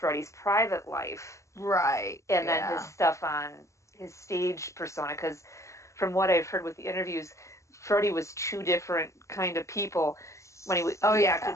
private life? Right. And then his stuff on his stage persona, because from what I've heard with the interviews, Freddie was 2 different kind of people. When he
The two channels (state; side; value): late; right; 0.15 ms